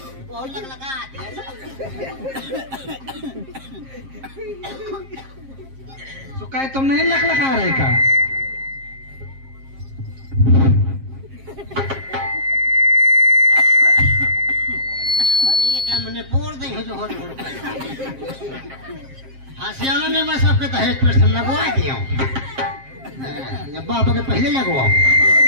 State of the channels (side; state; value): left; late; 7.5 ms